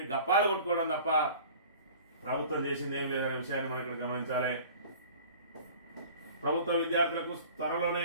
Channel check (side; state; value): both; inverted; correlation -0.44